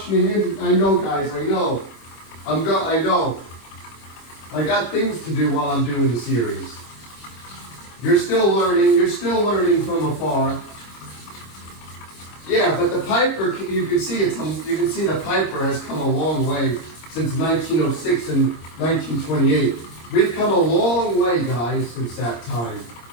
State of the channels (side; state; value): right; late; 25 ms